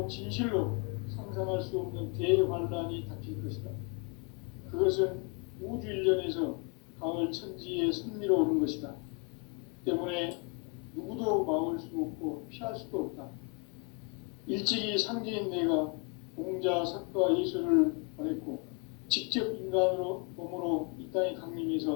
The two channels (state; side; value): quieter; right; 33.9 dB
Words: 진실로 상상할 수 없는 대환란이 닥칠 것이다. 그것은 우주 일련에서 가을 천지에 섭리로 오는 것이다. 때문에 누구도 막을 수 없고 피할 수도 없다. 일찍이 상제인 내가 공자, 석가, 예수를 보냈고 직접 인간으로 몸으로 이 땅에